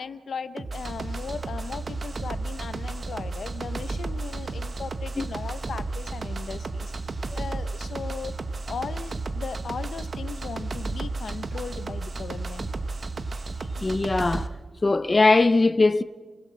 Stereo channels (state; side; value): normal; both; correlation 0.94